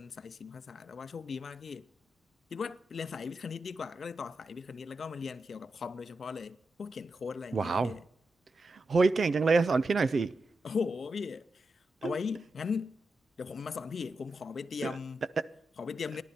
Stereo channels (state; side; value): normal; both; correlation 0.88